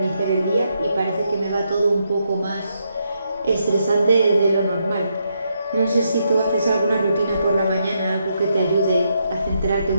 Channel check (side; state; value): both; inverted; correlation -0.79